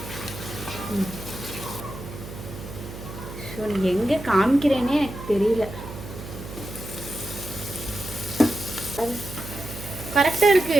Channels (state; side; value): noise; right; hum, 12 dB below the sound